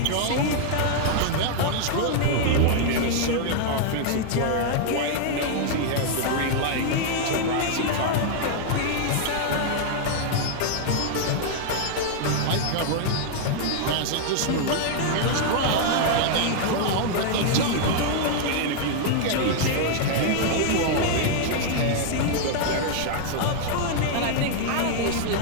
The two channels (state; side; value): different; both; correlation -0.01